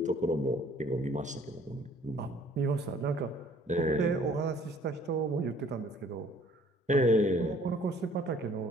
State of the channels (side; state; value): both; normal; correlation 0.57